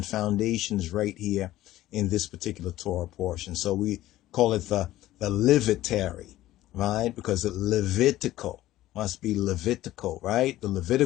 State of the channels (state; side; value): quieter; right; 15.2 dB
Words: foundation is right here in this particular Torah portion. So we call it the Levitary, right? Because it Levitical must be Levitical, right? The